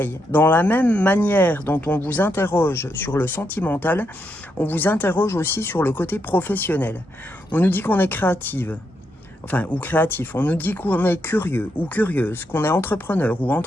Dans la même manière dont on vous interroge sur le sentimental, on vous interroge aussi sur le côté professionnel. On nous dit qu'on est créative, ou créatif. On nous dit qu'on est curieux ou curieuse, qu'on est entrepreneur ou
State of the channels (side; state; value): both; normal; correlation 0.81